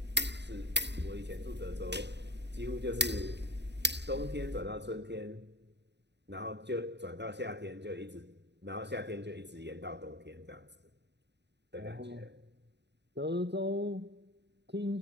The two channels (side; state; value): left; late; 0.50 ms